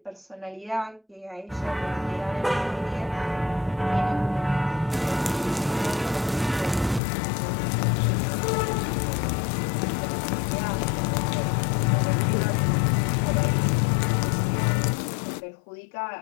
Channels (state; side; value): drops out; right; at 7.0 s